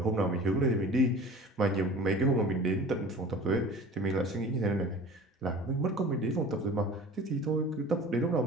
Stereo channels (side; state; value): both; normal; correlation 0.41